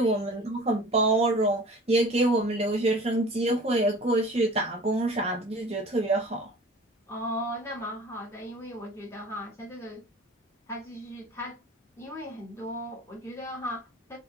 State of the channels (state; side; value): normal; both; correlation 0.43